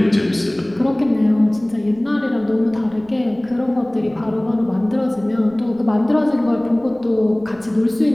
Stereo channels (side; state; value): right; noise; rumble, 26 dB below the sound